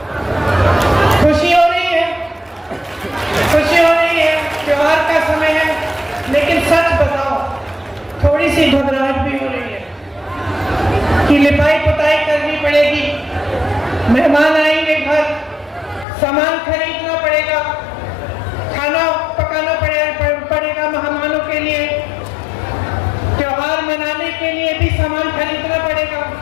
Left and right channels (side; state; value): right; drops out; at 16.1 s